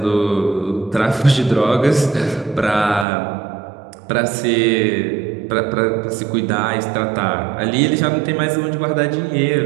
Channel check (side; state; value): left; drops out; at 3.1 s